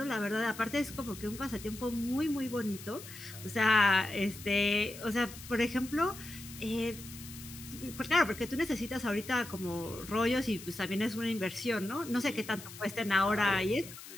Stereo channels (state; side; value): noise; left; hiss, 14 dB below the sound